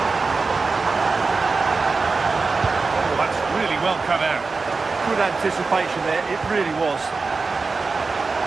Oh, that's really well cut out. Good anticipation there, it really was.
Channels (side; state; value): left; quieter; 4.2 dB